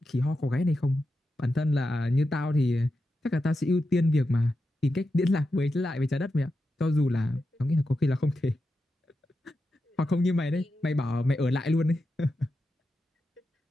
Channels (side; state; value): both; normal; correlation 0.89